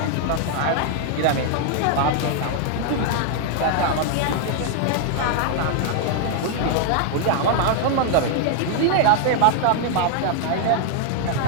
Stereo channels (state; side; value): different; both; correlation 0.00